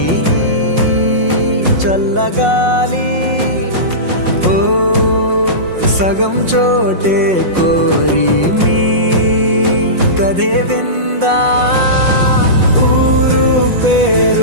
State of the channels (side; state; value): left; late; 5.5 ms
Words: చల్లగాలి ఓ సగం చోటే కోరి మీ కథే విందా ఊరు